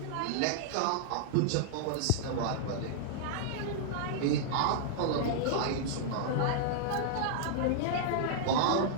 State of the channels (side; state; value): both; different; correlation -0.01